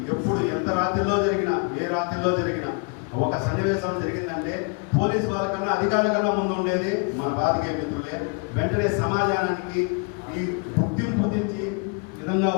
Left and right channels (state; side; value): quieter; right; 34.7 dB